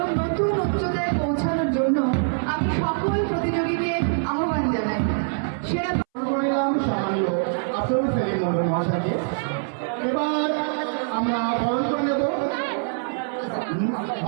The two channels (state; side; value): silent; left; 62 dB below the other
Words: নতুন উচ্চতায় পৌঁছানোর জন্য আমি সকল প্রতিযোগীকে আহ্বান জানাই। সেরা সামান্য আফরুল সেলিম মন্ডল মহাশয়কে। এবার আমরা বরণ করে নেব